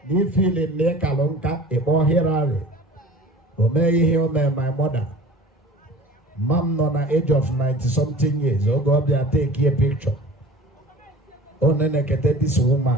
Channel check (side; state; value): both; normal; correlation 0.42